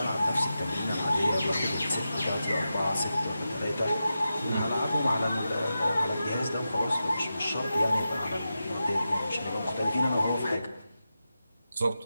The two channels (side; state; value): both; inverted; correlation -0.90